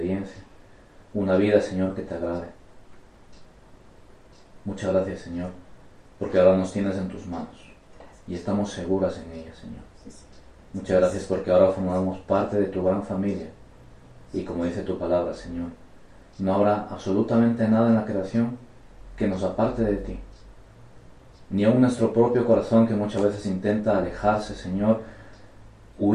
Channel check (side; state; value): both; identical; correlation 1.00